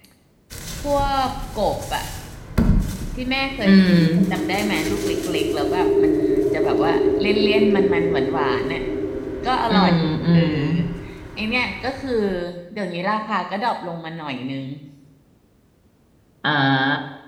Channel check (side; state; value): both; identical; correlation 1.00